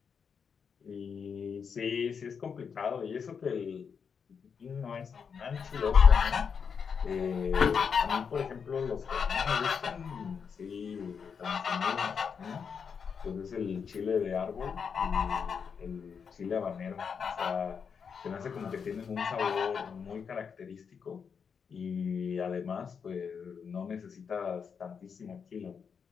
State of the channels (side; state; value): right; quieter; 6.4 dB